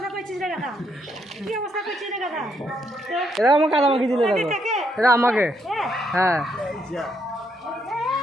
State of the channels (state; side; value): normal; both; correlation 0.75